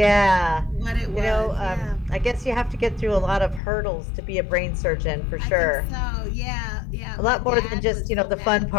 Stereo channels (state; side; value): drops out; right; at 3.6 s